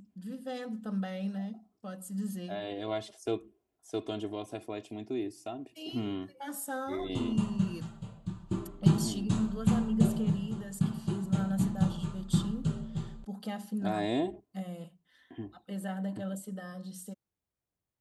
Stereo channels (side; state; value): both; identical; correlation 1.00